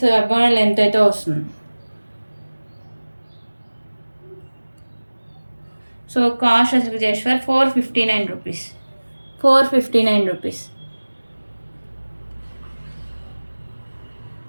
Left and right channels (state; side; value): inverted; both; correlation -1.00